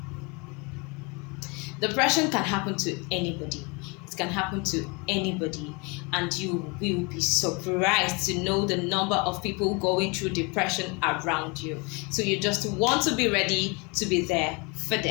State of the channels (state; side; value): quieter; right; 28.9 dB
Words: Depression can happen to anybody. It can happen to anybody, and you will be surprised to know the number of people going through depression around you. So you just want to be ready to be there for